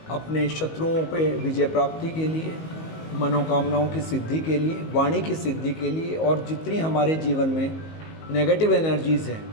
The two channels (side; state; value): right; late; 19 ms